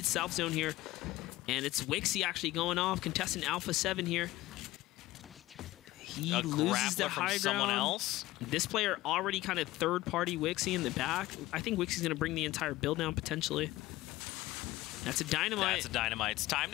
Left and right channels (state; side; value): quieter; right; 17.4 dB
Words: south zone here. And it's Wixie actually going off, contestant Alpha 7 here. He loses the high ground. Someone else. This player already kind of third-party Wixie in the back. I think Wixie's going to bring the entire build down potentially. That's a dynamite. That's a dynamite. It's time